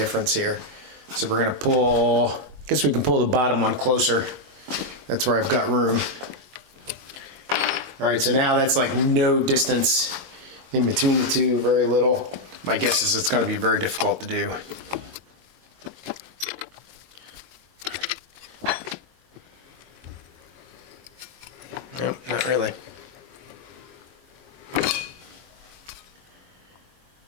here. So we're gonna pull, I guess we can pull the bottom one closer. That's where I've got room. All right, so now that's like no distance in between the two, very little. My guess is it's gonna be very difficult to do. Nope, not really.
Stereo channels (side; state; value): left; late; 22 ms